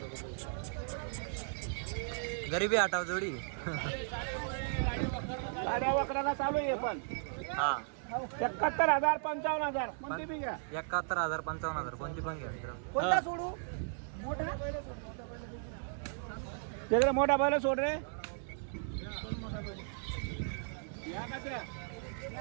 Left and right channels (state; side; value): silent; left; digital silence